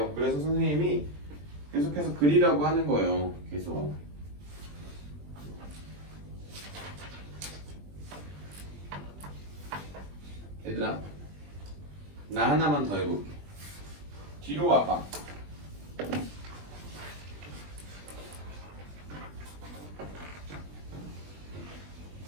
그래서 선생님이 계속해서 그리라고 하는 거예요. 계속. 얘들아, 나 하나만 더 해볼게. 뒤로 와봐.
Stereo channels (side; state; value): left; late; 20 ms